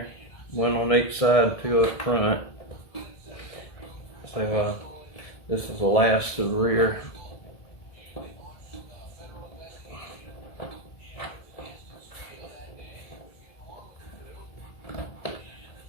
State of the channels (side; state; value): right; late; 1.7 ms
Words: one on each side, and two up front. So this is the last to the rear.